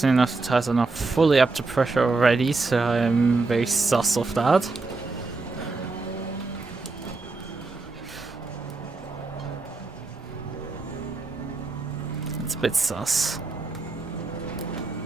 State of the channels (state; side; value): quieter; left; 3.7 dB